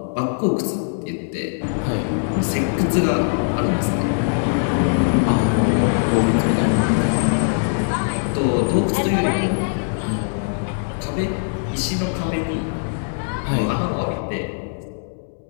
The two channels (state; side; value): silent; right; 65 dB below the other